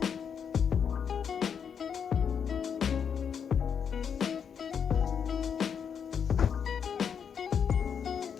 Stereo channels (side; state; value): right; quieter; 7.3 dB